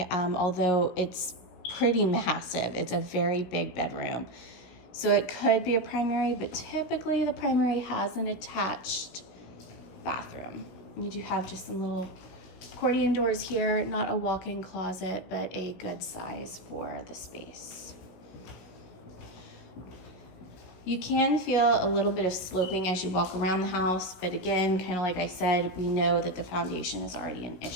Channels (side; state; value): right; late; 16 ms